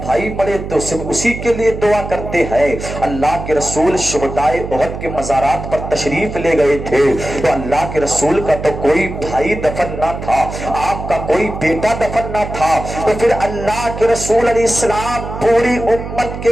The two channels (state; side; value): noise; right; hum, 8 dB below the sound